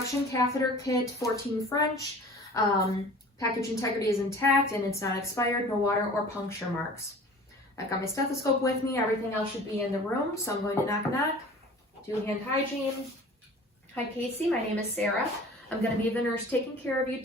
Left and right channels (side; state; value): both; normal; correlation 0.43